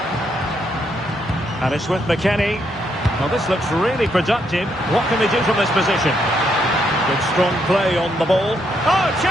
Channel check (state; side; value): normal; both; correlation 0.76